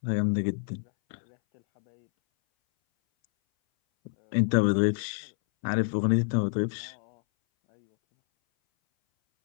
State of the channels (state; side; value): silent; right; 60 dB below the other